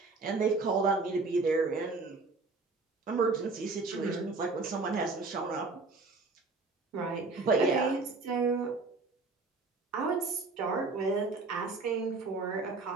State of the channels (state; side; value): quieter; left; 3.8 dB